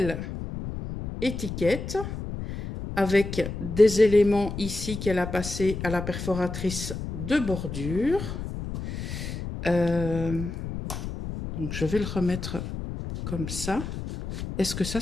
étiquette avec des éléments ici qu'elle a passé à la perforatrice de bordure. Donc, je vais le remettre comme ça. Est-ce que ça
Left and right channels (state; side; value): noise; left; rumble, 7 dB below the sound